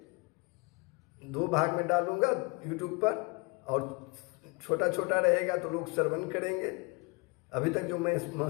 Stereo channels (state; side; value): quieter; right; 27.8 dB